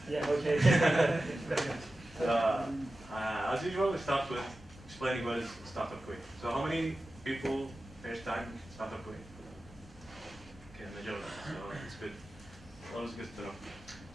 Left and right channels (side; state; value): both; normal; correlation 0.94